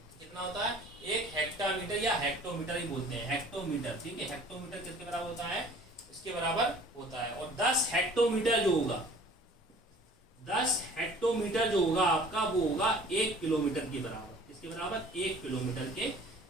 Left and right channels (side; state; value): both; normal; correlation 0.49